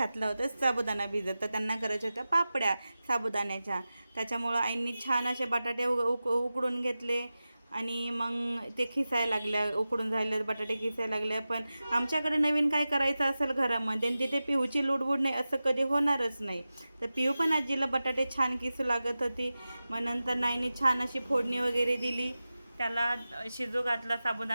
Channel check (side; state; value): both; inverted; correlation -0.95